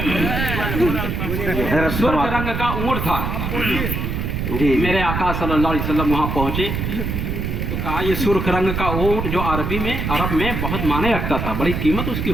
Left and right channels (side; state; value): right; noise; rumble, 2 dB below the sound